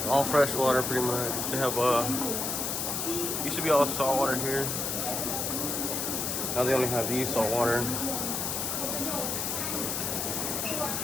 All fresh water pretty much. They have used to be all salt water here. Now they only have these salt water.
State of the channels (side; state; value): left; noise; hiss, 1 dB below the sound